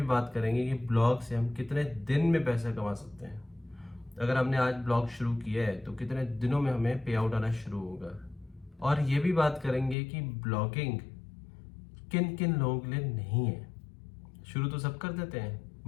बात करेंगे कि ब्लॉग से हम कितने दिन में पैसा कमा सकते हैं। अगर हमने आज ब्लॉग शुरू किया है तो कितने दिनों में हमें पे आउट आना शुरू होगा। और ये भी बात करेंगे कि ब्लॉगिंग किन किन लोगों के लिए नहीं है। शुरू तो सब कर देते हैं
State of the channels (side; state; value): right; drops out; at 10.0 s